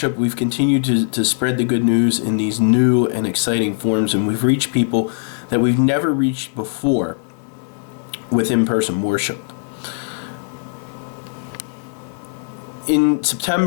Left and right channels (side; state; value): right; silent; digital silence